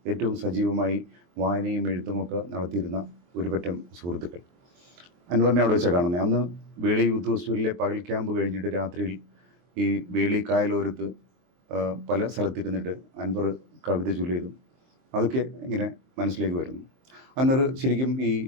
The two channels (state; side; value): late; left; 23 ms